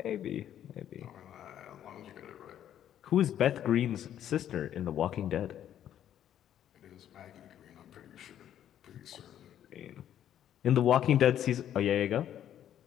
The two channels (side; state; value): right; quieter; 10.7 dB